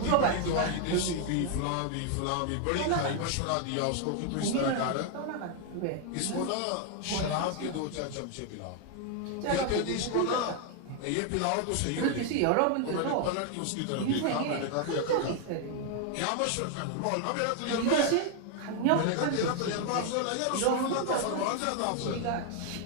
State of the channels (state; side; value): different; both; correlation 0.00